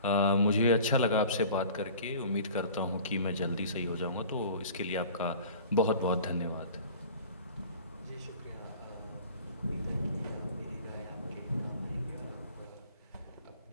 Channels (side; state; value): both; inverted; correlation -0.43